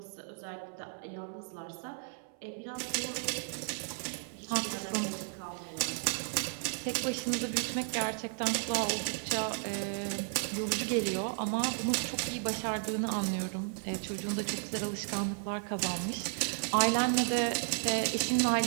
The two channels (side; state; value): left; silent; 55 dB below the other